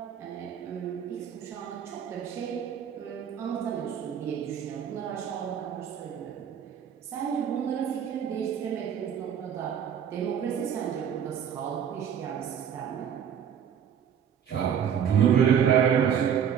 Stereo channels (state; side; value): quieter; left; 8.4 dB